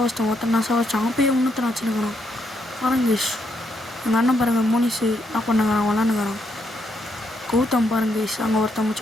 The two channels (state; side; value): normal; both; correlation 0.77